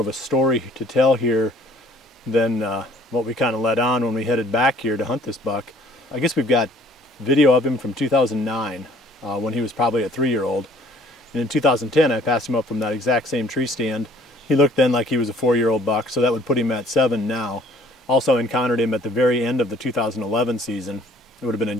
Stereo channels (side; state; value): both; normal; correlation 0.57